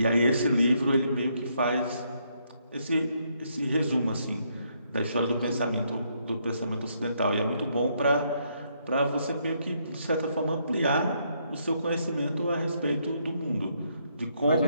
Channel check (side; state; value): both; inverted; correlation -0.74